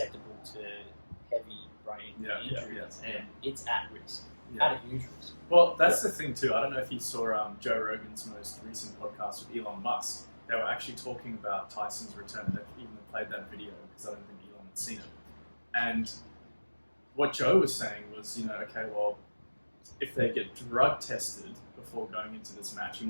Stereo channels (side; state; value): both; inverted; correlation -1.00